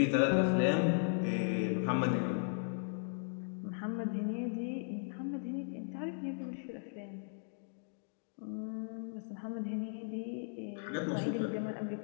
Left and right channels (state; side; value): silent; right; digital silence